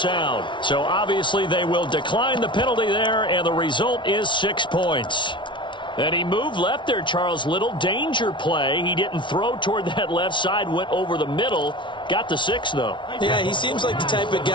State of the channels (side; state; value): right; late; 0.24 ms